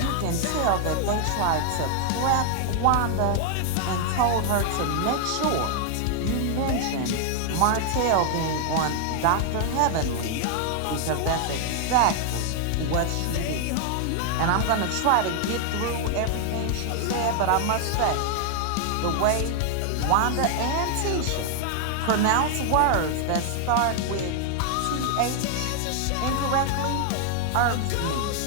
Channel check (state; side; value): different; both; correlation 0.00